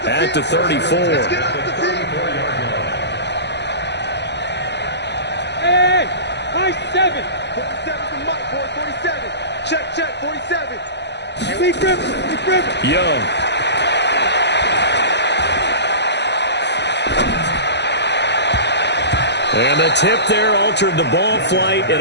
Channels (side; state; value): right; late; 0.50 ms